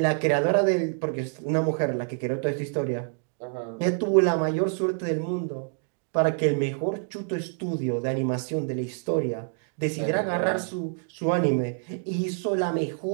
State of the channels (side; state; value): left; silent; 60 dB below the other